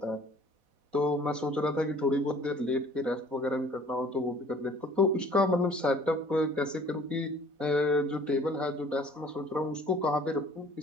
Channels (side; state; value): left; late; 4.1 ms